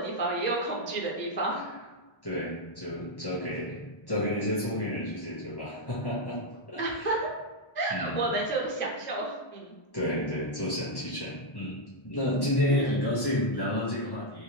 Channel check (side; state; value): right; late; 1.1 ms